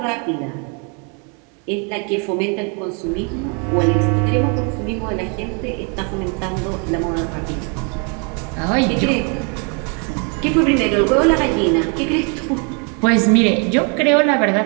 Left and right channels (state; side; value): quieter; left; 36.4 dB